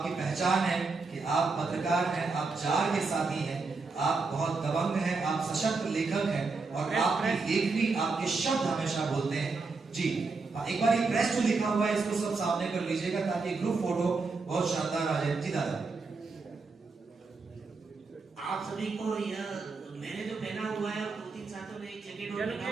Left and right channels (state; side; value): quieter; left; 4.1 dB